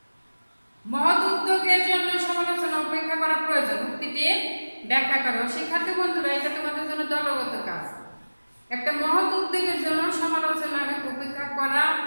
মহৎ উদ্যোগের জন্য সমালোচনা উপেক্ষা করা প্রয়োজন। উক্তিটি ব্যাখ্যা করো। শিক্ষার্থী বন্ধুরা, এটা তোমাদের জন্য দলগত কাজ। একটা মহৎ উদ্যোগের জন্য সমালোচনা উপেক্ষা করা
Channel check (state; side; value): inverted; both; correlation -1.00